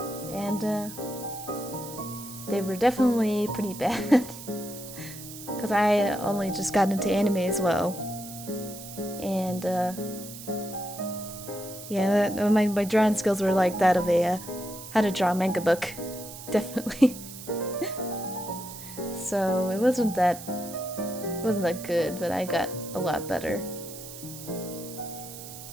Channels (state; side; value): noise; right; hiss, 13 dB below the sound